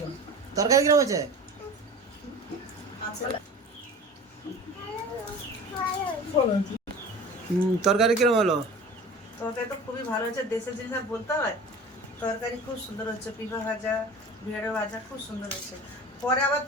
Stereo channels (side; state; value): both; normal; correlation 0.38